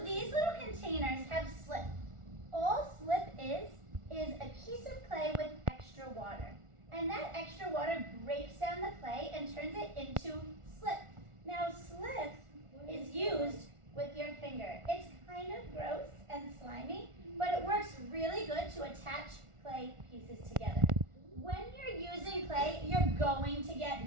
these little containers have slip. All slip is a piece of clay with extra water. And that extra water breaks down the clay and turns it into slip. Now slip is used with your finger. It's kind of gross and slimy, but it works really good to attach clay pieces together. When you're using clay, you're going to get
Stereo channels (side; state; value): left; late; 1.4 ms